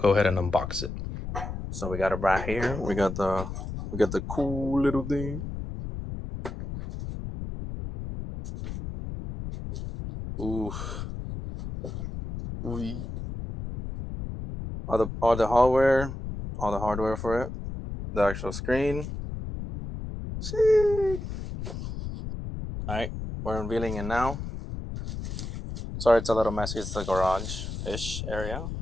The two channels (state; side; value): noise; left; rumble, 7 dB below the sound